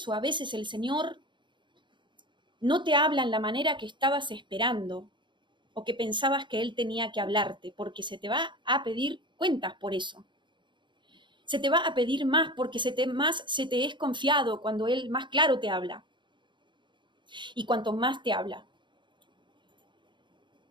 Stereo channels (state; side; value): late; left; 0.23 ms